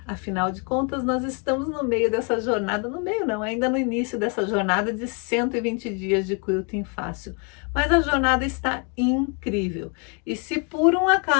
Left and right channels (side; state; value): right; quieter; 36.1 dB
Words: Afinal de contas, nós estamos no meio dessa jornada, no meio não, ainda no início dessa jornada de 120 dias de quilting fácil. Mas a jornada está incrível. E se por um